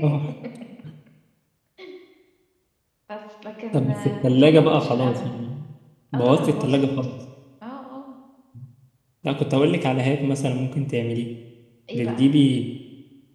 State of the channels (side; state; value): both; identical; correlation 1.00